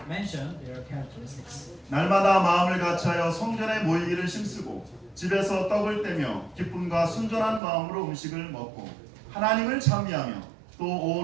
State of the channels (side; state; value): left; drops out; at 7.6 s